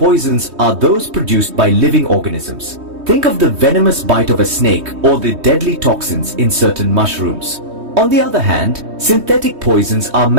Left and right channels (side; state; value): left; late; 3.2 ms